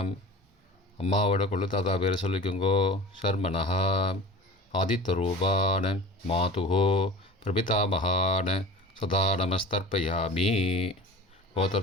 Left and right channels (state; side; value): normal; both; correlation 0.38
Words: அம்மாவோட கொள்ளு தாத்தா பேரை சொல்லிக்கோங்கோ ஷர்மனஹா. ஆதித்தரூபான மாதுஹோ பிரபிதாமகான சதா நமஸ்தர்ப்பயாமி.